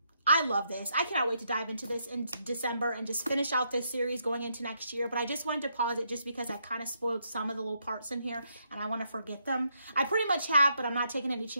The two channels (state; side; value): inverted; both; correlation -0.77